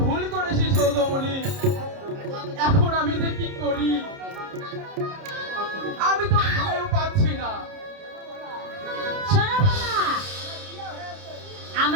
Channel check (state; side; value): late; left; 30 ms